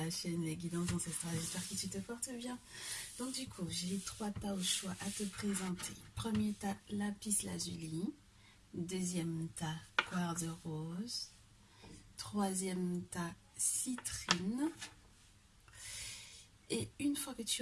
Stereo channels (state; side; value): identical; both; correlation 1.00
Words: chaîne Les Guidances Ancestrales. J'espère que tu te portes bien. Donc du coup, j'ai 3 tas au choix à te présenter. Premier tas, lapis lazuli. Deuxième tas, quartz rose. Troisième tas, citrine. Et une fois que